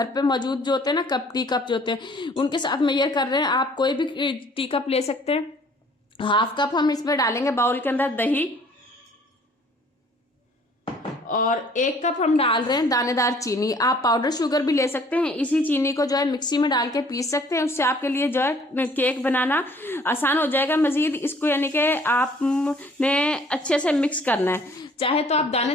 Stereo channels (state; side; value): normal; both; correlation 0.57